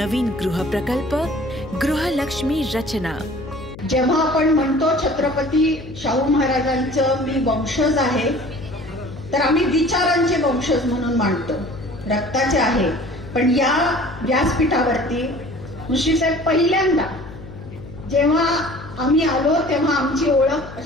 गृहप्रकल्प गृहलक्ष्मी रचना। जेव्हा आपण म्हणतो छत्रपती शाहू महाराजांचं मी वंशज आहे, तर आम्ही विचारांचे वंशज म्हणून मानतो, रक्ताचे आहे। पण या व्यासपीठावरती मुश्रीफ साहेब पहिल्यांदा जेव्हा आम्ही आलो तेव्हा आमची ओळख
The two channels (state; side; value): noise; left; hum, 15 dB below the sound